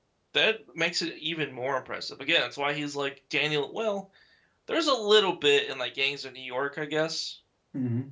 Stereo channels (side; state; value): both; identical; correlation 1.00